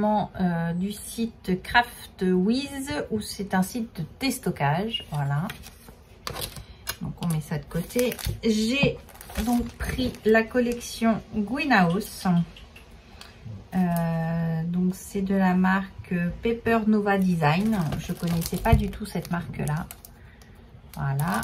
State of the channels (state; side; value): identical; both; correlation 1.00